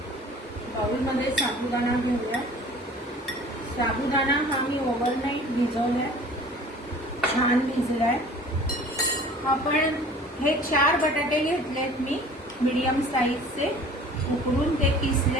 बाउलमध्ये साबुदाणा घेऊया. साबुदाणा हा मी ओव्हरनाईट भिजवलाय, छान भिजलाय. आपण हे 4 बटाटे घेतलेत मी मीडियम साईजचे, उकडून ते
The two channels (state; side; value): normal; both; correlation 0.46